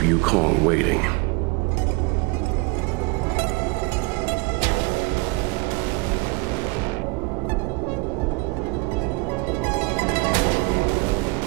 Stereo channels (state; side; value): quieter; left; 25.9 dB